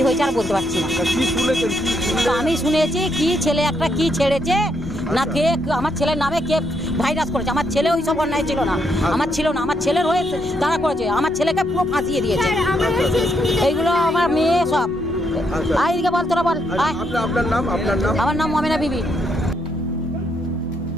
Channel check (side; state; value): both; normal; correlation 0.76